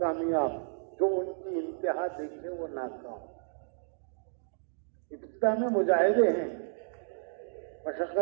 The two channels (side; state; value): left; silent; digital silence